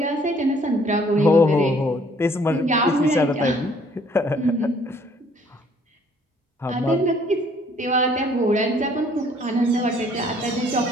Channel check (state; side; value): normal; both; correlation 0.61